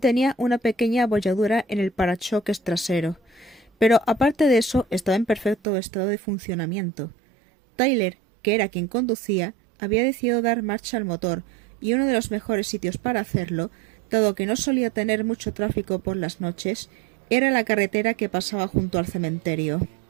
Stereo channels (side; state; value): left; drops out; at 5.6 s